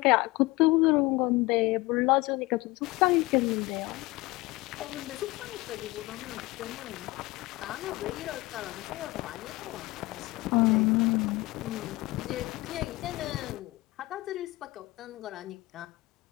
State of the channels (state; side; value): quieter; right; 21.2 dB